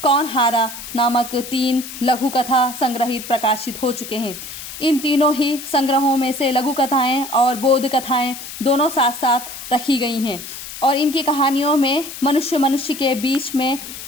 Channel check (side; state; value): left; noise; hiss, 11 dB below the sound